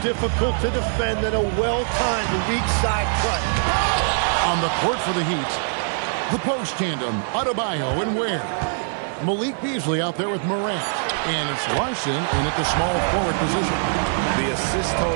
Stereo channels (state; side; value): silent; left; 57 dB below the other